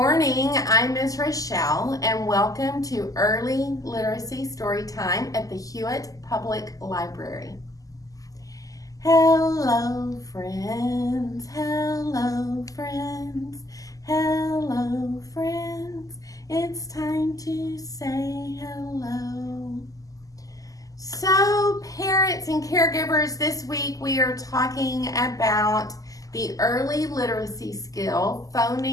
I'm Ms. Rochelle, and welcome to Early Literacy Storytime at the Hewitt Public Library. Hello, friends, hello, friends, hello, friends. It's time to say hello. So, parents and caregivers, this week we are talking about the early literacy skill,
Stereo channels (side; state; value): right; late; 0.17 ms